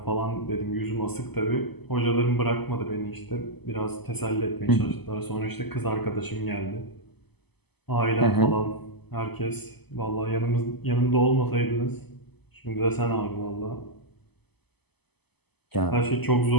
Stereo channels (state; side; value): late; right; 0.98 ms